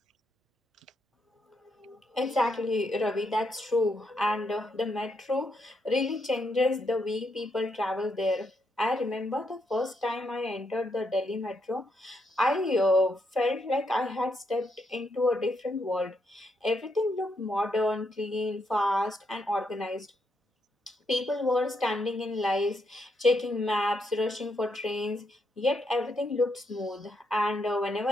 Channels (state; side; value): normal; both; correlation 0.78